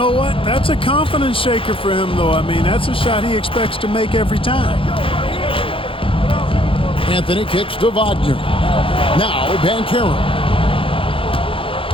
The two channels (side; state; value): right; late; 0.26 ms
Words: what? That's a confidence shaker for him, though. I mean, that's a shot he expects to make every time. Anthony kicks to Wagner. Now Banchero.